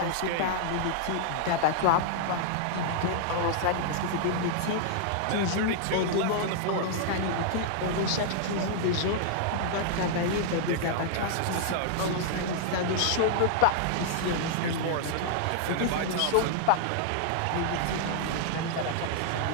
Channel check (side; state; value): both; different; correlation -0.01